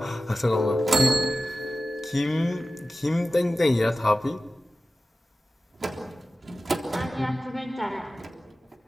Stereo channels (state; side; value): normal; both; correlation 0.95